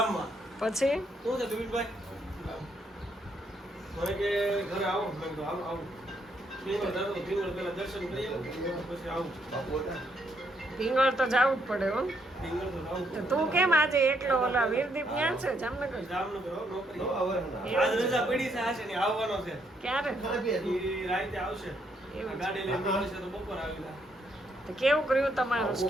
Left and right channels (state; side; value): normal; both; correlation 0.74